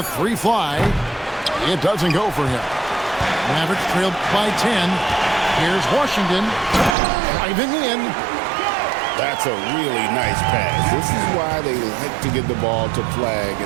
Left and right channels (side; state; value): left; drops out; at 7.0 s